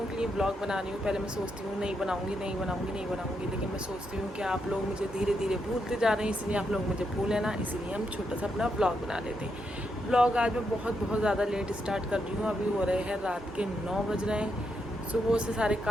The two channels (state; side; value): normal; both; correlation 0.81